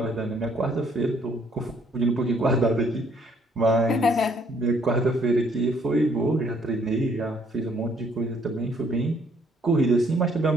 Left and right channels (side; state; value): both; normal; correlation 0.65